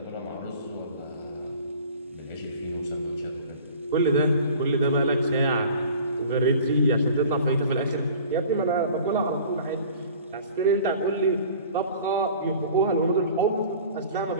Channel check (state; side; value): inverted; both; correlation -0.45